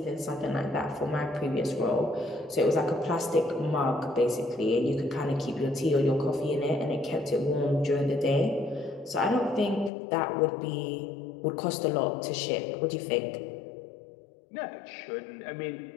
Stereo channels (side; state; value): right; drops out; at 9.9 s